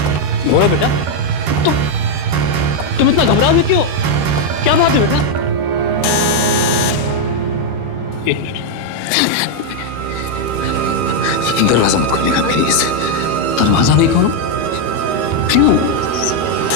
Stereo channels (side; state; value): left; late; 13 ms